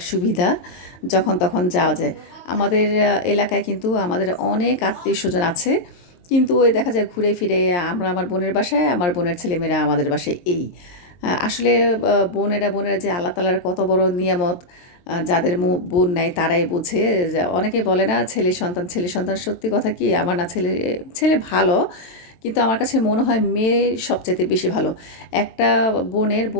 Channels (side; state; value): right; late; 23 ms